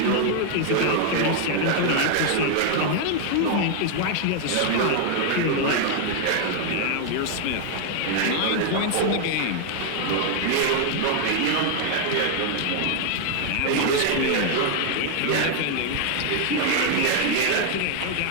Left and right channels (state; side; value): different; both; correlation 0.00